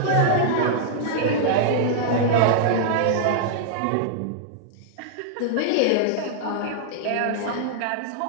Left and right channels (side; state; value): both; different; correlation -0.01